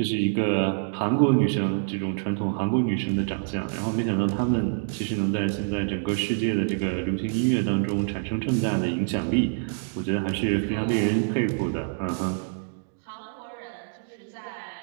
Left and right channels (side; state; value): left; silent; digital silence